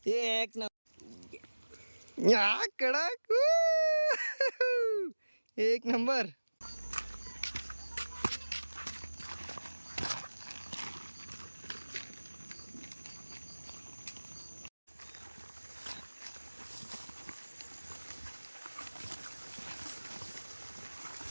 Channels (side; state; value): both; inverted; correlation -1.00